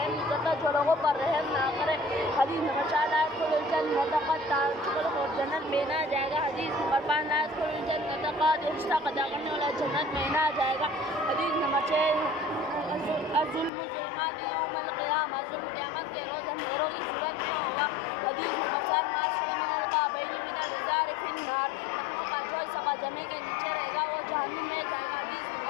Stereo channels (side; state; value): right; drops out; at 13.7 s